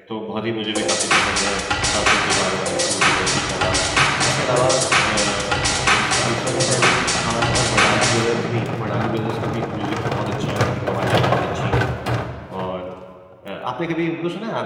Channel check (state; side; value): identical; both; correlation 1.00